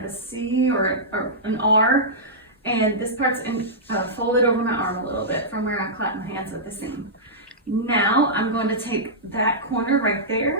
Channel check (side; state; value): both; normal; correlation -0.14